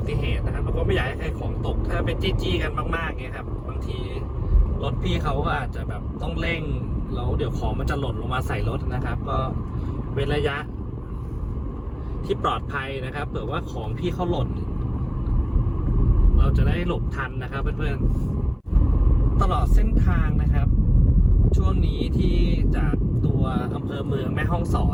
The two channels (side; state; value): both; identical; correlation 1.00